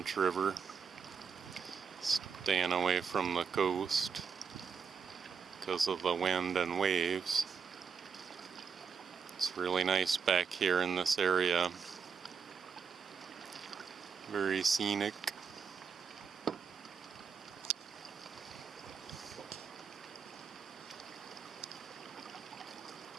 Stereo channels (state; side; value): quieter; left; 6.1 dB